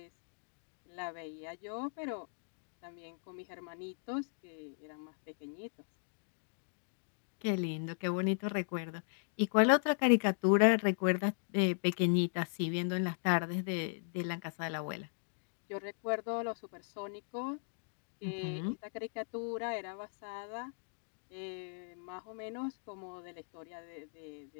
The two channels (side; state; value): right; silent; digital silence